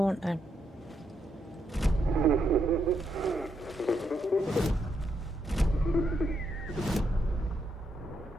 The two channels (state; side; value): normal; both; correlation 0.79